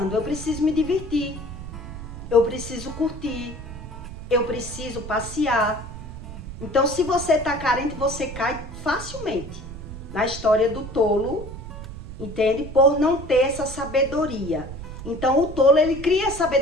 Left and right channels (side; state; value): right; noise; rumble, 11 dB below the sound